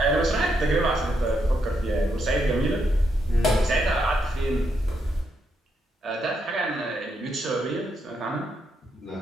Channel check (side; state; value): both; normal; correlation 0.79